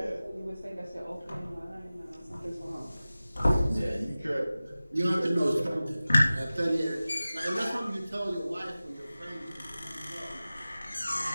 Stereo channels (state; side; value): inverted; both; correlation -0.97